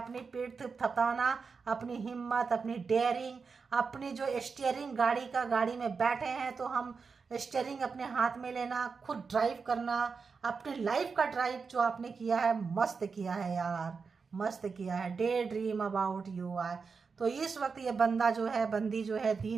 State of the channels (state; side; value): quieter; left; 5.1 dB